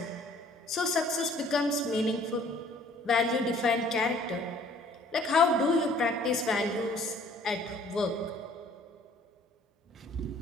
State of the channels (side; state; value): both; normal; correlation 0.57